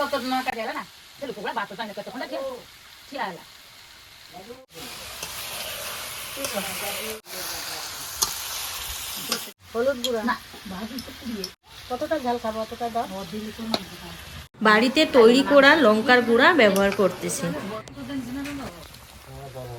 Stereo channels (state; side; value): identical; both; correlation 1.00